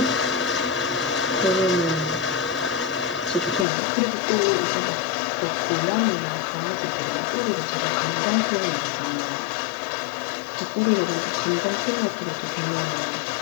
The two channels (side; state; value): right; drops out; at 3.7 s